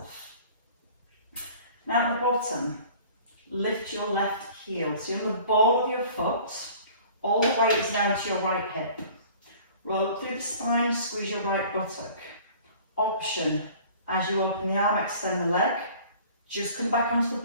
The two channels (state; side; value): inverted; both; correlation -0.48